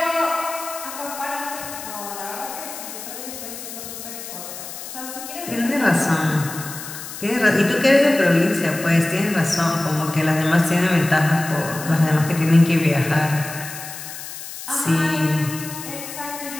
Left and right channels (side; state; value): left; noise; hiss, 11 dB below the sound